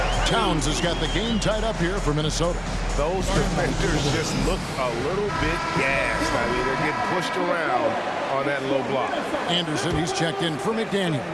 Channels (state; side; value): identical; both; correlation 1.00